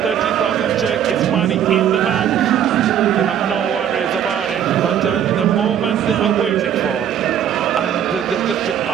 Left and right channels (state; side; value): quieter; left; 9.5 dB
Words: 30,000 check is money in the bank. They have no worries about it, but the moment they are waiting for, and they've just been